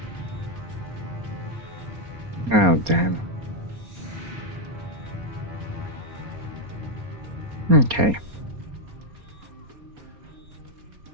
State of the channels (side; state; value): left; late; 4.3 ms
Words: Oh, damn. Okay.